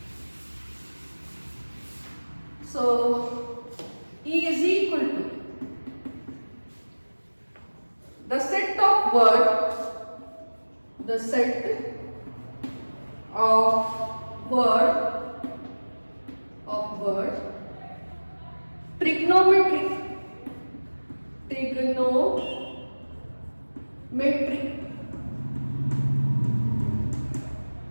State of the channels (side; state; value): both; inverted; correlation -1.00